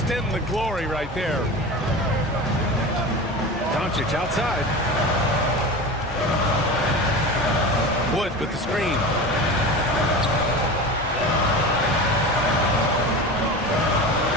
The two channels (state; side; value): normal; both; correlation 0.30